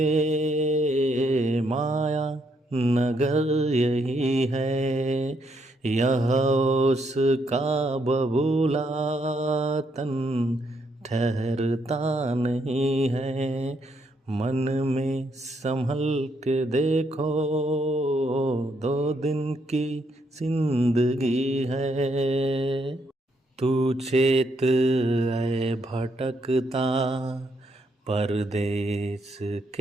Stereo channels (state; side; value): normal; both; correlation 0.75